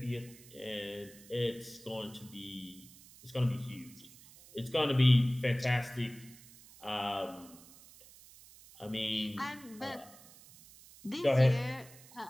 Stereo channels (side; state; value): right; noise; hiss, 21 dB below the sound